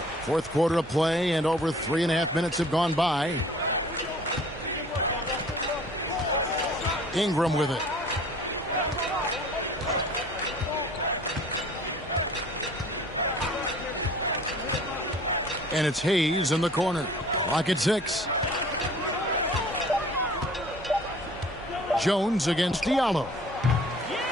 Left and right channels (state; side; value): normal; both; correlation 0.50